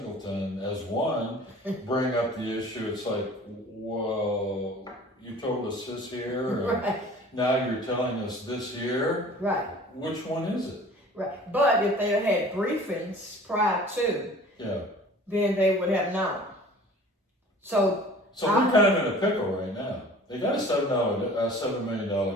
as one, bring up the issue. It's like, well, you told us this here, and right. now you're telling us this here. Right. Which one is it? Right. But if they had briefings prior to, then they would have known. So we're kind of in a pickle right now. They got a $7 million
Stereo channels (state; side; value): normal; both; correlation 0.46